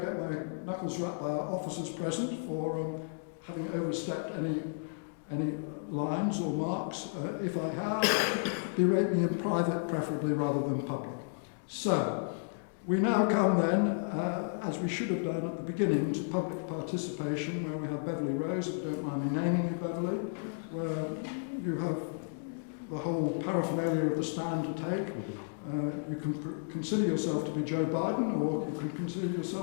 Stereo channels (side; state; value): right; silent; digital silence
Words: get my knuckles rapped by our officers present for having overstepped any lines or marks. If I have, berate me in private, preferably rather than public. So, we now come then, as we should have done at the beginning, to public participation, where we have Beverly Rose, if you don't mind me naming you, Beverly, where you have the whole paraphernalia of the stand to take. You can consider yourself to be Joe Biden, or you can consider